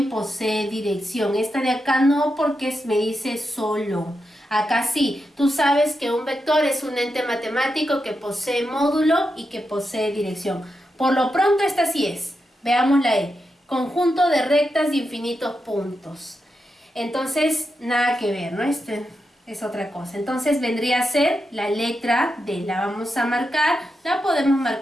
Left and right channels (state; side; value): normal; both; correlation 0.87